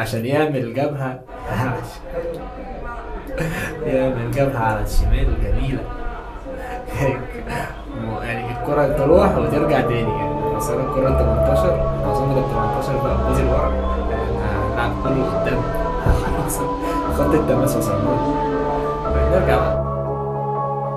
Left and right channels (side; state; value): both; identical; correlation 1.00